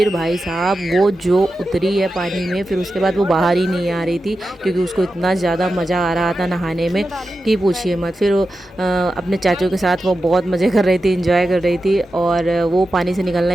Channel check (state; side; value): normal; both; correlation 0.91